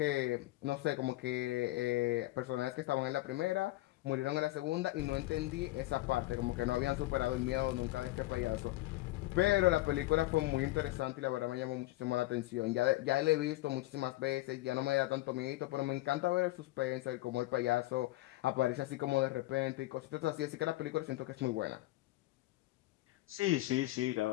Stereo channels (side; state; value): right; quieter; 18.1 dB